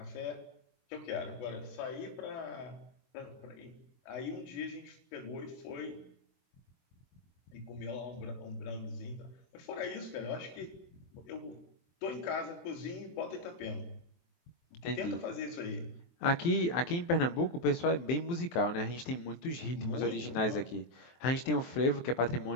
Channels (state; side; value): late; right; 23 ms